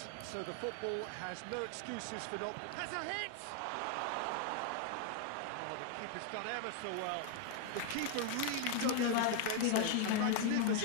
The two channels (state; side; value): different; both; correlation 0.00